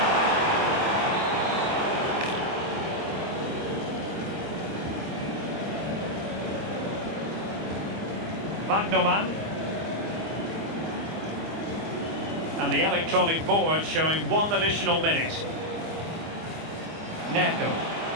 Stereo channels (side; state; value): left; late; 25 ms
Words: Wagnerman. And the electronic board showing one additional minute. Neto.